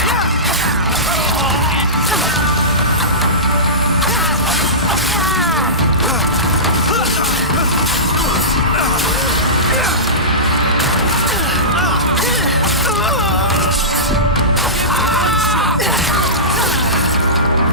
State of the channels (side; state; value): both; normal; correlation -0.19